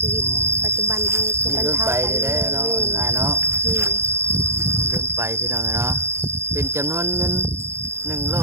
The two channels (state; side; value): late; left; 0.13 ms